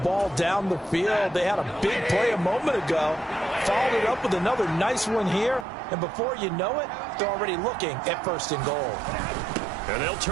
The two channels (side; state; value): left; drops out; at 5.7 s